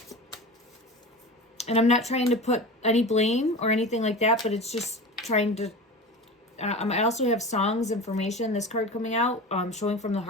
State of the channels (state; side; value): normal; both; correlation 0.31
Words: And I'm not trying to put any blame or anything like that, but it's just trying to... I also have songs information, this card coming out, showing from the